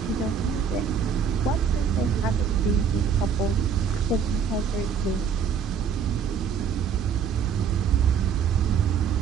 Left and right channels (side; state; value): left; quieter; 6.8 dB